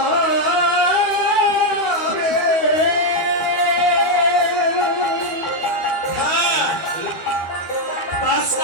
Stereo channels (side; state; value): right; late; 12 ms